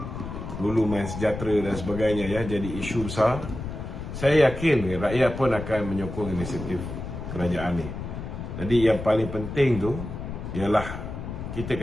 dulu Main Sejahtera dan sebagainya, jadi isu besar. Saya yakin rakyat pun akan menyokong inisiatif kerajaan ni. Jadi yang paling penting tu ialah kita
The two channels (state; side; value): noise; left; rumble, 8 dB below the sound